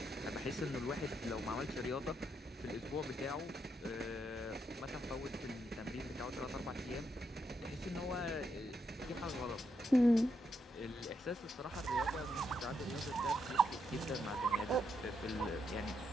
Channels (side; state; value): both; normal; correlation 0.80